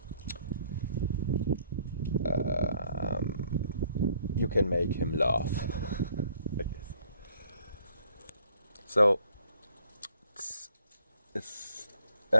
you can make him laugh. I guess. So,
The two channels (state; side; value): inverted; both; correlation -0.63